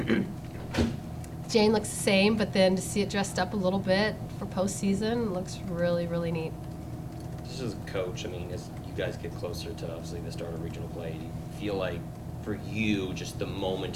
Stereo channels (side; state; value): both; identical; correlation 1.00